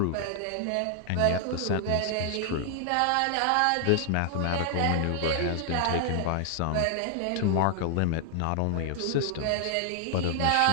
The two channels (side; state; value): both; different; correlation 0.00